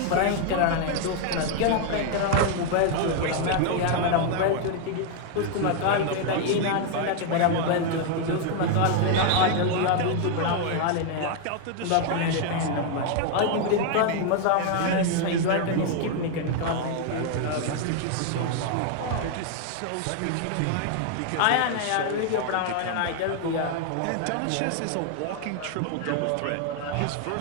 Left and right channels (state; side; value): different; both; correlation 0.00